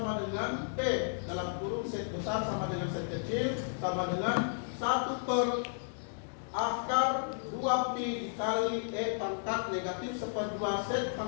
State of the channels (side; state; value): right; silent; digital silence